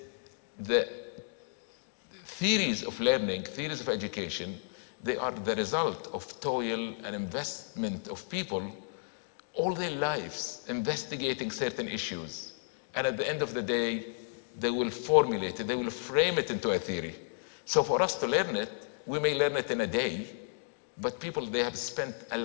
the theories of learning, theories of education, they are the result of toil and investment of people all their lives investigating certain issues. And at the end of the day, they will formulate it, they will frame it into a theory. So for us to learn it, we may learn it in a day, but people, they have spent a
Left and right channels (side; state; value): right; silent; digital silence